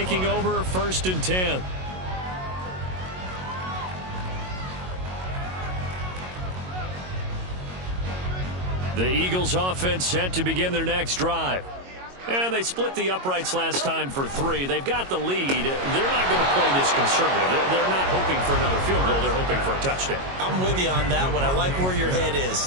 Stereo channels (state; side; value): late; left; 22 ms